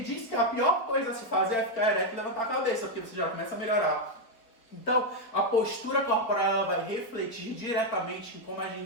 diz que a pior coisa a se fazer é ficar ereto e levantar a cabeça, porque você já começa a melhorar. Então, a postura corporal vai refletir diretamente em como a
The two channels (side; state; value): right; late; 4.6 ms